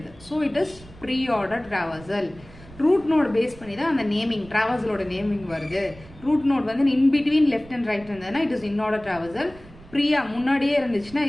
so it is pre order traversal. Root node base பண்ணி தான் அந்த நேமிங், டிராவல்சலோட நேமிங் வருது. ரூட் நோட் வந்து in between left and right இருந்ததுன்னா it is in order traversal. ப்ரீயா முன்னாடியே இருந்துச்சுன்னா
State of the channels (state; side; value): noise; right; rumble, 21 dB below the sound